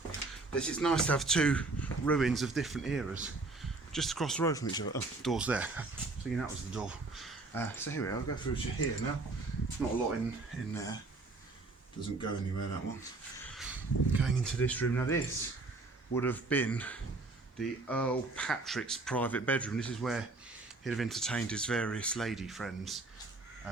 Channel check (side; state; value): left; quieter; 3.4 dB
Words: It's nice to have two ruins of different eras just across the road from each other. Oh, door's there. Thinking that was the door. So here we are. I'll go through to here now. Not a lot in there. Doesn't go anywhere, that one. Going into this room. Now this would have been the Earl Patrick's private bedroom. This is where he'd have entertained his various lady friends,